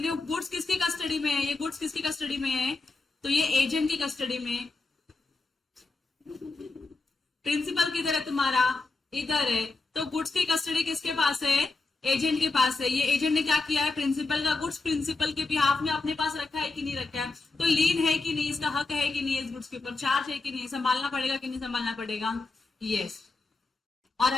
नहीं। गुड्स किसकी कस्टडी में है, ये गुड्स किसकी कस्टडी में है, तो ये एजेंट की कस्टडी में। प्रिंसिपल किधर है तुम्हारा, इधर है, तो गुड्स की कस्टडी किसके पास है, एजेंट के पास है। ये एजेंट ने क्या किया है, प्रिंसिपल का गुड्स प्रिंसिपल के बिहाफ में अपने पास रखा है कि नहीं रखा है, तो लीन है कि नहीं, इसका हक है कि नहीं, इस गुड्स के ऊपर चार्ज है कि नहीं, संभालना पड़ेगा कि नहीं संभालना पड़ेगा, यस। और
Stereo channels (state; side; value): quieter; right; 3.6 dB